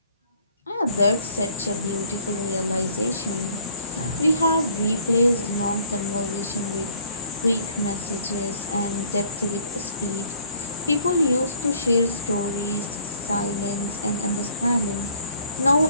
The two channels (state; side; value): inverted; both; correlation -0.58